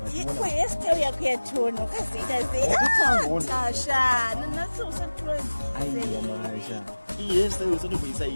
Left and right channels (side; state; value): both; inverted; correlation -1.00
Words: kwehesitari yako yatono kaziita zeitasha iyi hesitari usatomboisa